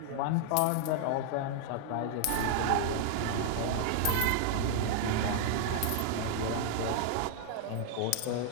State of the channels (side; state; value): both; different; correlation 0.00